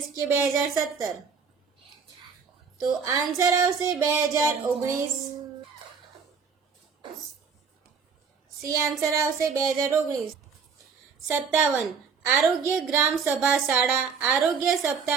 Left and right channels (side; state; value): left; quieter; 5.8 dB